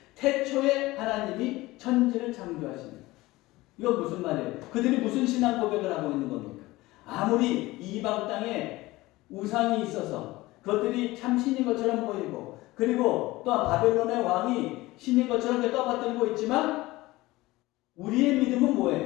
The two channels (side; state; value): right; quieter; 19.3 dB